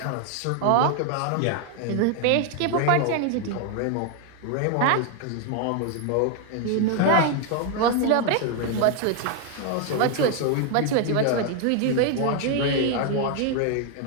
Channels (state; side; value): different; both; correlation 0.01